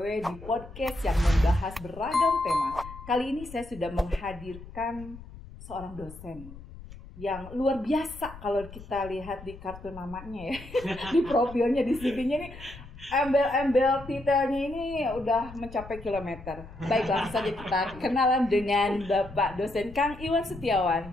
di podcast yang membahas beragam tema. Kali ini saya sudah menghadirkan seorang dosen yang luar biasa kalau kita lihat di kartu namanya ya, di profilnya, di CV-nya ini, embel-embel titelnya ini udah mencapai kilometer. Baik, langsung saja kita kenalan dengan Bapak dosen Kang Iwan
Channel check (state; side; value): noise; left; rumble, 16 dB below the sound